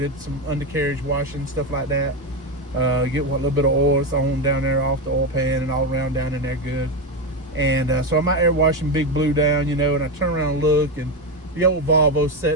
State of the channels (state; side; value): normal; both; correlation 0.12